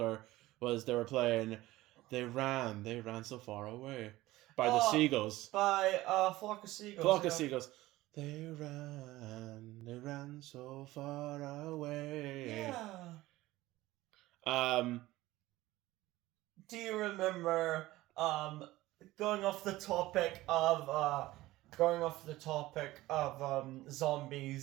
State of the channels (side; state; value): left; quieter; 17.5 dB